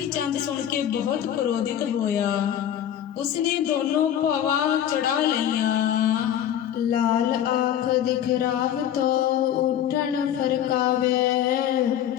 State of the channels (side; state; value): right; quieter; 10.5 dB